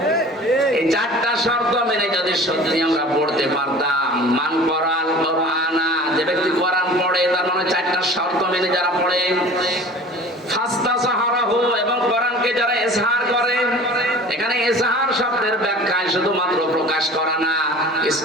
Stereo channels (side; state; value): both; normal; correlation 0.42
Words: এই চারটা শর্ত মেনে যদি সত্যি আমরা পড়তে পারতাম, মান কোরআন কোরআনা, যে ব্যক্তি কোরআন পড়ে তার মানে চারটা শর্ত মেনে যারা পড়ে, ফাস্তাসাহারাহু, এবং কোরআনকে যারা ইজহার করে, এখানে ইজহার শব্দের ব্যাখ্যায় শুধুমাত্র প্রকাশ করা না,